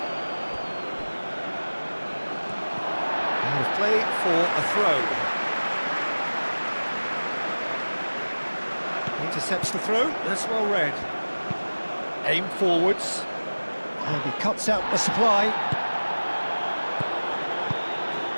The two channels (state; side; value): inverted; both; correlation -1.00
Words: Out of play for a throw. Intercepts the throw. That's well read. Aim forwards. And he cuts out the supply.